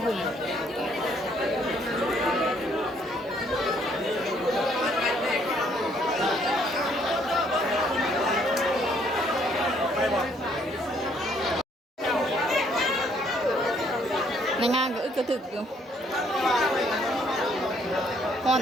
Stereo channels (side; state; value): both; normal; correlation 0.66